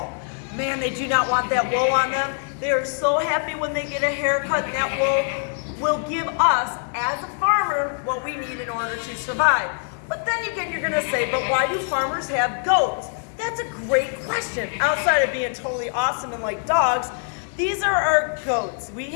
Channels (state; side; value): silent; right; 61 dB below the other